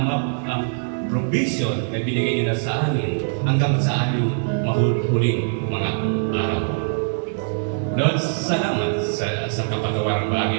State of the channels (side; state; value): left; silent; digital silence